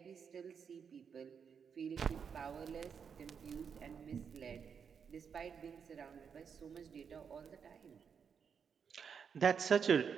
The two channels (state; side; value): quieter; left; 6.8 dB